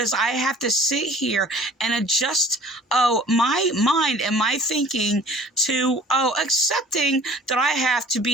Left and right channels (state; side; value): normal; both; correlation 0.50